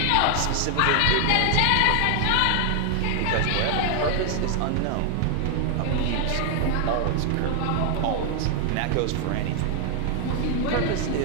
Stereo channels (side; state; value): both; different; correlation 0.00